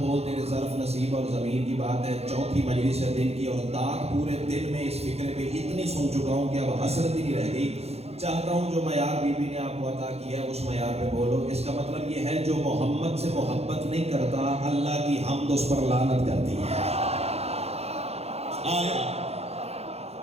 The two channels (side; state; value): left; late; 0.30 ms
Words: تیرے ظرف نصیب اور ضمیر کی بات ہے۔ 4تھی مجلس ہے دن کی اور داغ پورے دل میں اس فکر پہ اتنی سن چکا ہوں کہ اب حسرت ہی نہیں رہ گئی۔ چاہتا ہوں جو معیار بی بی نے آپ کو عطا کیا ہے اس معیار پہ بولو۔ اس کا مطلب یہ ہے جو محمد سے محبت نہیں کرتا، اللہ کی حمد اس پر لعنت کرتی ہے۔ آیا